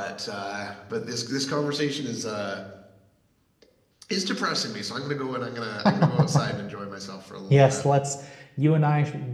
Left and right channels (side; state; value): both; identical; correlation 1.00